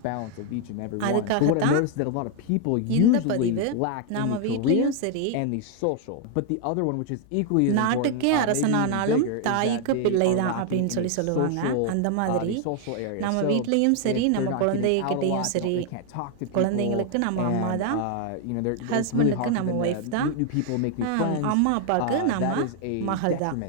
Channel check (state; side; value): different; both; correlation 0.00